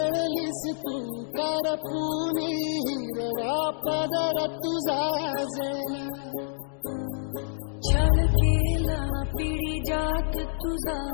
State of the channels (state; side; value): silent; right; digital silence